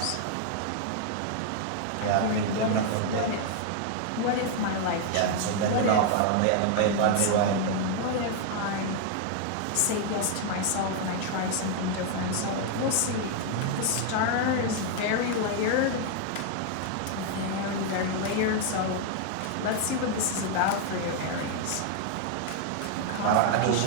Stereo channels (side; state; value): both; different; correlation 0.00